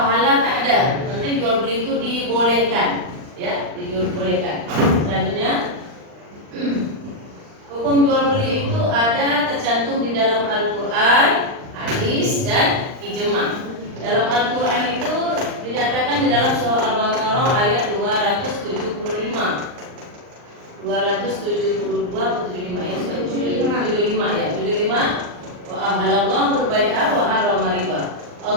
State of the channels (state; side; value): late; left; 39 ms